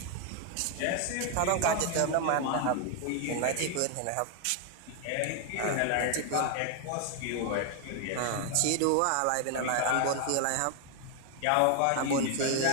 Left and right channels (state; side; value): different; both; correlation 0.01